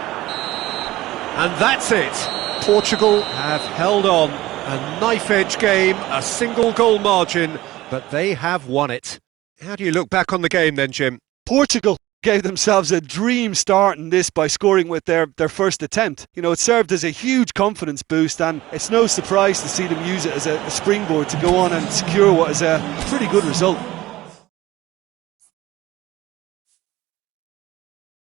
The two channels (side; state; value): left; quieter; 17.0 dB